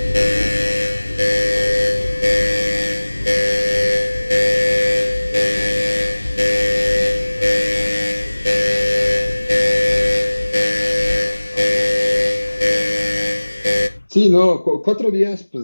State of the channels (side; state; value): both; inverted; correlation -1.00